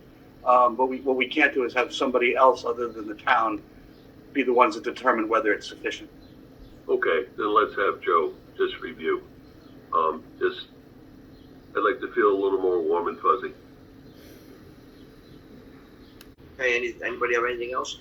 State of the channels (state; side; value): identical; both; correlation 1.00